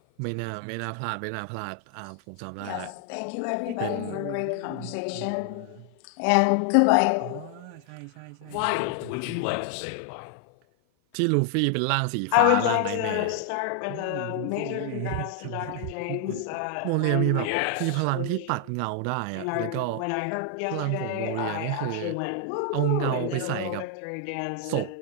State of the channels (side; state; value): both; different; correlation 0.00